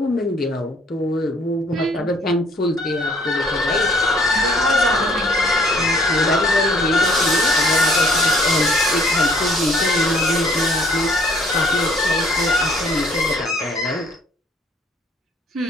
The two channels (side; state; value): both; normal; correlation 0.60